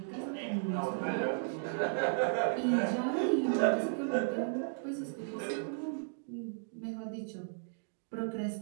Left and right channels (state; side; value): silent; left; digital silence